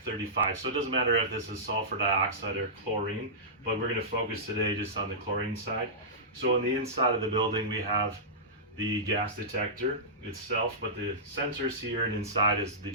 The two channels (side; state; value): both; normal; correlation -0.17